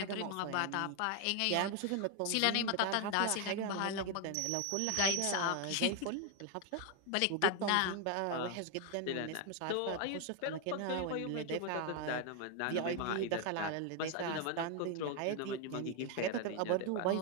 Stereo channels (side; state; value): both; different; correlation 0.01